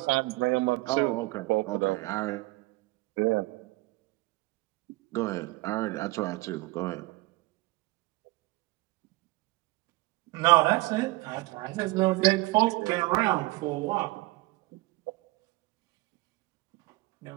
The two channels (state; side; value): quieter; left; 21.6 dB